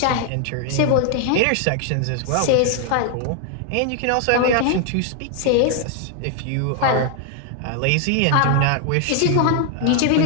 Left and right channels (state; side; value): different; both; correlation 0.00